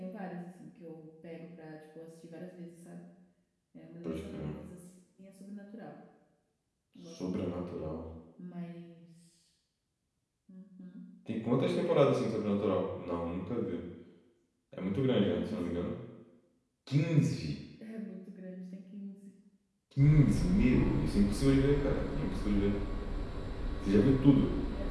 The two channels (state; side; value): identical; both; correlation 1.00